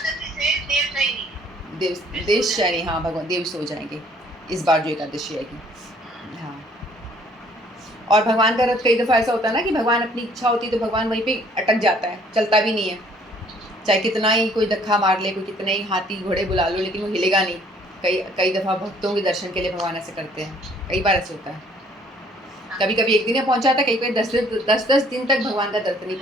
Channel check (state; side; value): normal; both; correlation 0.60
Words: से देव शयनी, हाँ भगवान देव सो जाएंगे इस बार जो एकादशी आएगी। हाँ, और भगवान का रथ कई दफ़ा ऐसा होता है ना कि भगवान अपनी इच्छा होती है तो भगवान वहीं पे अटक जाता है, चलता भी नहीं है। चाहे कितना ही कोई धक्का मार ले, कोई कितने ही हाथी घोड़े बुला लो, लेकिन वो हिलेगा नहीं। कई दफ़ा भक्तों के दर्शन के लिए भगवान ऐसे करते हैं, कई बार ऐसे होता है। कभी कभी एक दिन में पहुंचा था, कई कई 10 दिन तक भगवान का दर्शन नहीं